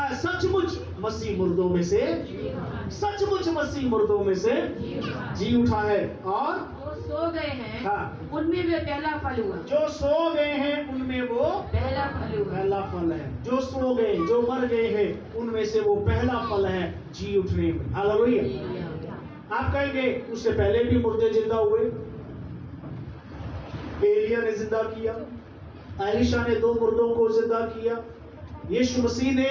सचमुच मसीह मुर्दों में से, सचमुच मसीह मुर्दों में से जी उठा है और वो सो गए हैं, हाँ, उनमें वे पहला फल हुआ। जो सो गए हैं उनमें वो पहला फल हुआ। पहला फल है। जो सो गए, जो मर गए हैं उनमें से वो पहला फल है जी उठने में। हालेलुया। आप कहेंगे उससे पहले भी मुर्दे जिंदा हुए, एलिया ने जिंदा किया, एलीशा ने 2 मुर्दों को जिंदा किया, यीशु मसीह ने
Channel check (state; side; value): identical; both; correlation 1.00